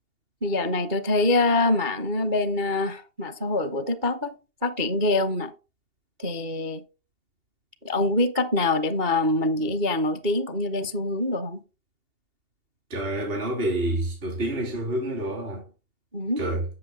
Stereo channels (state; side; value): late; left; 2.8 ms